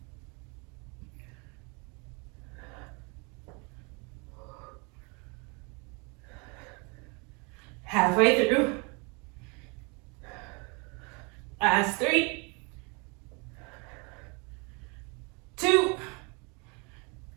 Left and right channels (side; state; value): left; quieter; 31.7 dB